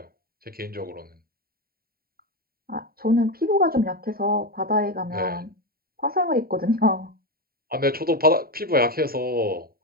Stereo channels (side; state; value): left; late; 0.43 ms